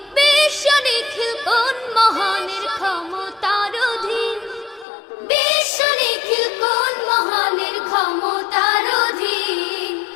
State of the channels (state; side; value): drops out; right; at 4.9 s